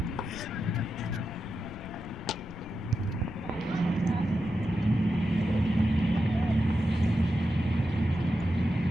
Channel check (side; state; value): left; noise; rumble, 15 dB below the sound